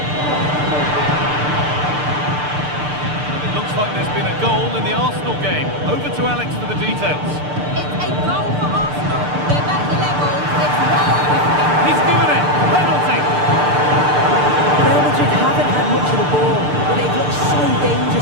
Like there's been a goal in the Arsenal game. Over to Alex for the details. It's a goal for Arsenal. They're back level. It's 1. He's given it. Penalty. Real Madrid haven't had much of the ball,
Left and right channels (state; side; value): late; left; 6.7 ms